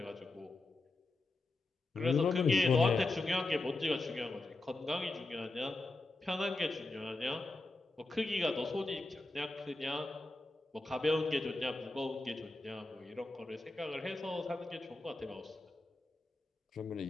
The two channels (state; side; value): quieter; right; 3.1 dB